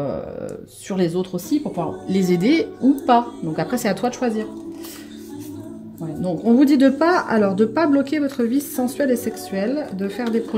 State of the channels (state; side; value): identical; both; correlation 1.00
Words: sur les autres aussi pour pouvoir les aider ou pas. Donc après, c'est à toi de choisir. Ouais, donc on vous dit de pas bloquer votre vie sensuelle et sexuelle, de faire des